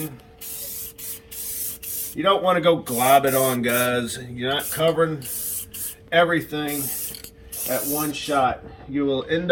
You don't want to go glob it on, guys. You're not covering everything at one shot. You will end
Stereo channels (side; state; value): both; identical; correlation 1.00